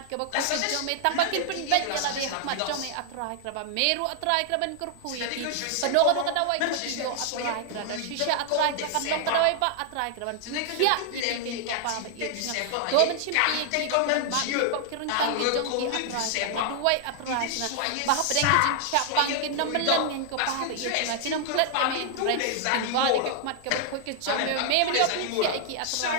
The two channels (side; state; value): both; different; correlation 0.00